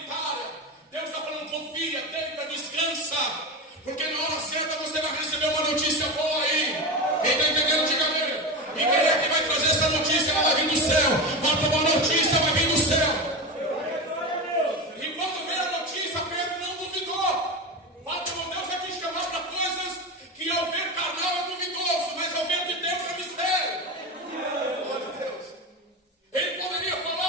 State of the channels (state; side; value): normal; both; correlation 0.21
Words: Deus está falando, confia, deita, descansa. Porque na hora certa você vai receber uma notícia boa aí. Quem está entendendo, diga amém. E quem é que vai trazer essa notícia? Ela vai vir do céu. Uma notícia vai vir do céu. Que ao ver carnal é duvidoso, mas ao ver de Deus é mistério. Glória a Deus. Ele poderia